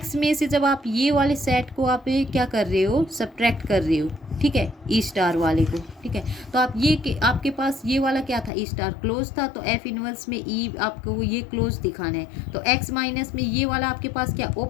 में से जब आप ये वाले सेट को आप क्या कर रहे हो, सब्ट्रैक्ट कर रहे हो, ठीक है, ई स्टार वाले को, ठीक है। तो आप ये आपके पास ये वाला क्या था, ई स्टार क्लोज था, तो एफ इनवर्स में ई आपको ये क्लोज दिखाना है। तो एक्स माइनस में ये वाला आपके पास क्या,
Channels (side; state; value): right; drops out; at 8.5 s